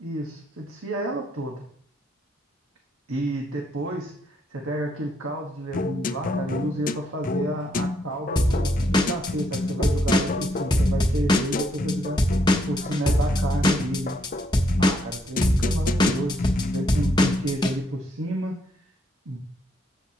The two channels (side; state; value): both; normal; correlation 0.74